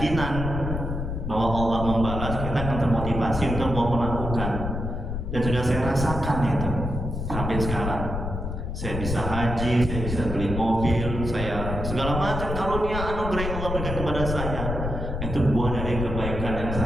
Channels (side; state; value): left; noise; rumble, 4 dB below the sound